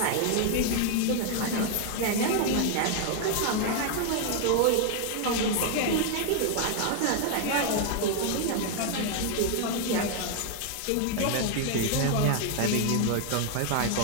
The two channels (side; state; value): both; different; correlation 0.00